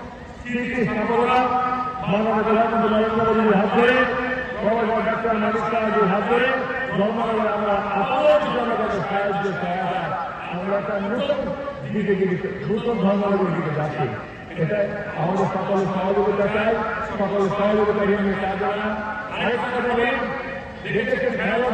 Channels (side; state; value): both; identical; correlation 1.00